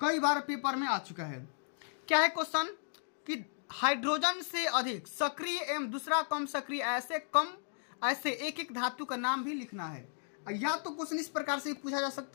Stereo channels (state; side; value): silent; right; digital silence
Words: बार पेपर में आ चुका है। क्या है क्वेश्चन कि हाइड्रोजन से अधिक सक्रिय एवं दूसरा कम सक्रिय ऐसे एक एक धातु का नाम भी लिखना है। या तो क्वेश्चन इस प्रकार से पूछा जा